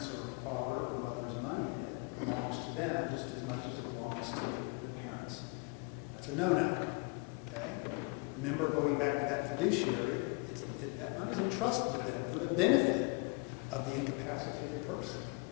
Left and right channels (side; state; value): right; quieter; 31.7 dB